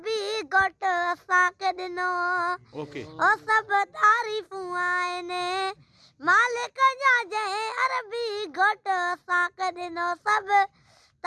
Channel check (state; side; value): identical; both; correlation 1.00